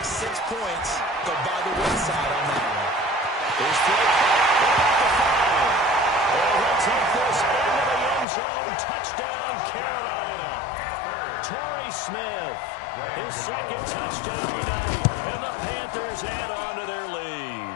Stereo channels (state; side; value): drops out; right; at 8.2 s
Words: 6 points go by the wayside on that one. There's 3. And he'll take this into the end zone. Touchdown, Carolina. Torrey Smith, his 2nd touchdown tonight. And the Panthers add on to their lead.